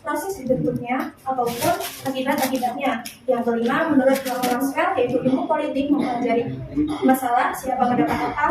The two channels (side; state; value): both; identical; correlation 1.00